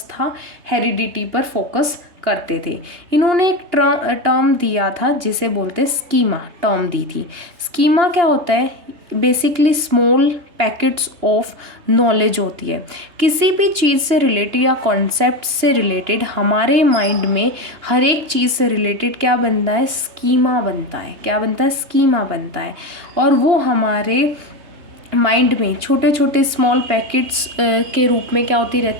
था, हेरिडिटी पर फोकस करते थे। इन्होंने एक टर्म दिया था जिसे बोलते स्कीमा, टर्म दी थी। स्कीमा क्या होता है? Basically small packets of knowledge होती है। किसी भी चीज़ से रिलेटेड या कॉन्सेप्ट से रिलेटेड हमारे माइंड में हर एक चीज़ से रिलेटेड क्या बनता है? स्कीमा बनता है। क्या बनता है? स्कीमा बनता है। और वो हमारे माइंड में छोटे छोटे स्मॉल पैकेट्स के रूप में क्या होती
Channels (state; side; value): late; left; 3.3 ms